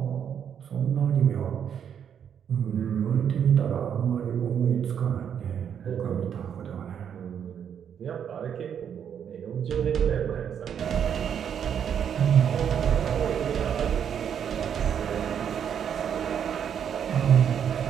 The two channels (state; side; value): quieter; left; 8.4 dB